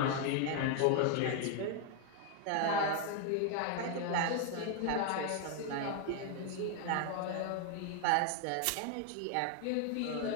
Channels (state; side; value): different; both; correlation 0.00